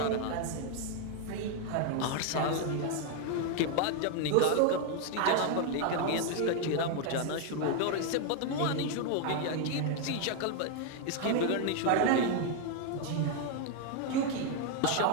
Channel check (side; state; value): both; different; correlation 0.01